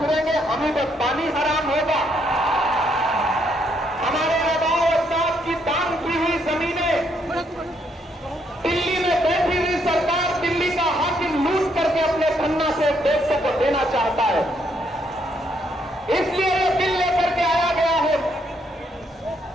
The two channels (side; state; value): both; normal; correlation 0.73